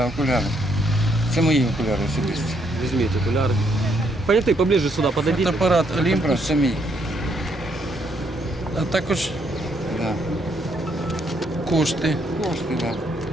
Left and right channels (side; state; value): both; normal; correlation 0.72